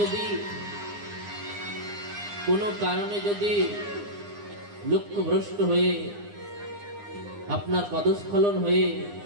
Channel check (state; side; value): late; left; 9.8 ms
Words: কোনো কারণে যদি লক্ষ্যভ্রষ্ট হয়ে আপনার পদস্খলন হয়ে